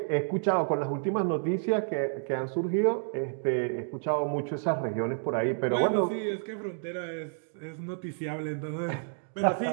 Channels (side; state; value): left; silent; digital silence